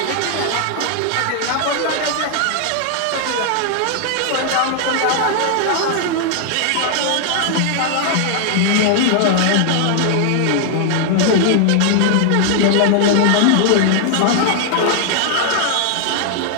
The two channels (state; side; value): different; both; correlation 0.00